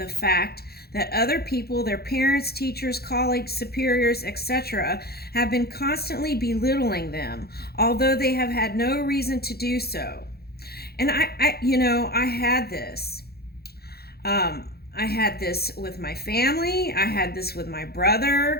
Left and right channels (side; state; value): right; late; 0.46 ms